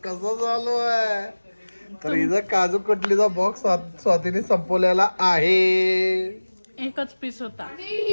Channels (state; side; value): inverted; both; correlation -1.00